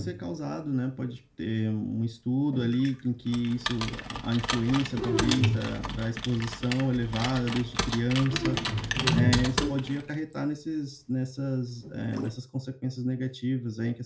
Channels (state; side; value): identical; both; correlation 1.00